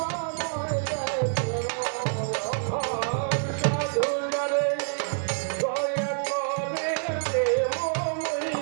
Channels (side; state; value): left; silent; digital silence